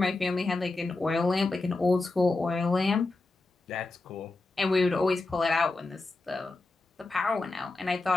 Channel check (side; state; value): right; quieter; 3.2 dB